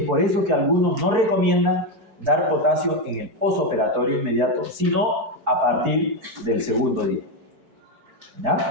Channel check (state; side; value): late; left; 4.6 ms